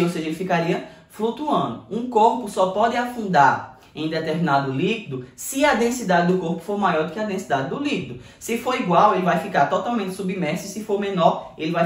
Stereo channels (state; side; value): identical; both; correlation 1.00